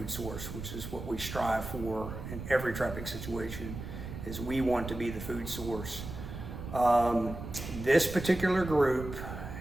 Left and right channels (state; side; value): noise; right; rumble, 9 dB below the sound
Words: source, which is what we strive for in every trapping situation, is we want to be the food source. This particular group,